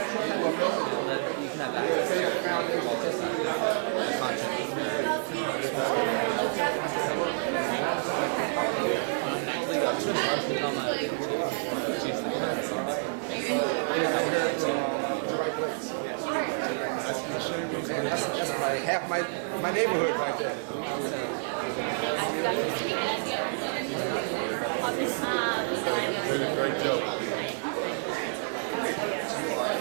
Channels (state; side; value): silent; left; digital silence